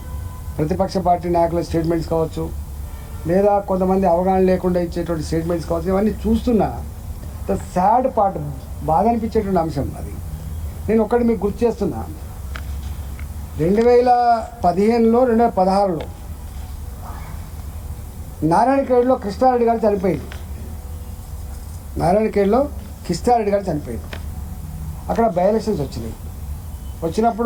ప్రతిపక్ష పార్టీ నాయకుల స్టేట్మెంట్స్ కావచ్చు, లేదా కొంతమంది అవగాహన లేకుండా ఇచ్చేటువంటి స్టేట్మెంట్స్ కావచ్చు, ఇవన్నీ చూస్తున్నా ద సాడ్ పార్ట్, బాధ అనిపించేటువంటి అంశం అది. నేను ఒక్కటి మీకు గుర్తు చేస్తున్నా, 2015లో 2016లో నారాయణఖేడ్లో కృష్ణారెడ్డి గారు చనిపోయింది. నారాయణఖేడ్లో కృష్ణారెడ్డి గారు చనిపోయింది. అక్కడ బై ఎలక్షన్స్ వచ్చినాయి.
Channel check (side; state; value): both; identical; correlation 1.00